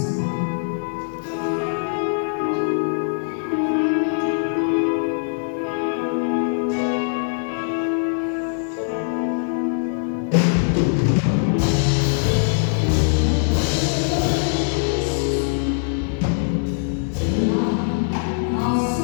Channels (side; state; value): right; silent; digital silence